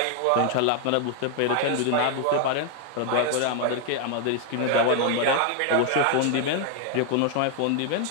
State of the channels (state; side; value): different; both; correlation 0.00